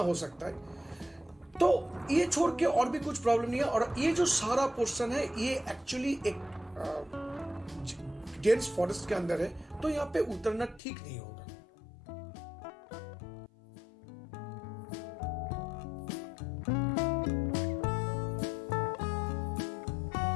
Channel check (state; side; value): drops out; right; at 10.8 s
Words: सकता है। तो ये छोड़ के और भी कुछ प्रॉब्लम नहीं है। और ये जो सारा पोर्शन है, ये एक्चुअली एक डेंस फॉरेस्ट के अंदर है, तो यहाँ पे उतरना ठीक नहीं होगा।